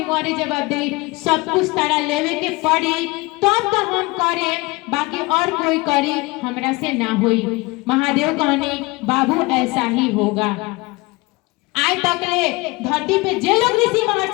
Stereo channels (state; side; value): quieter; right; 23.8 dB